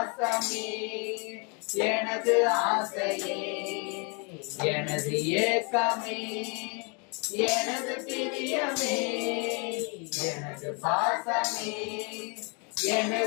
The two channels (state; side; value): quieter; right; 34.6 dB